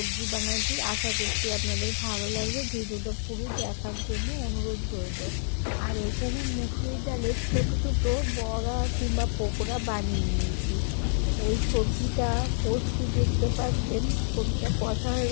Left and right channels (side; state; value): right; silent; 59 dB below the other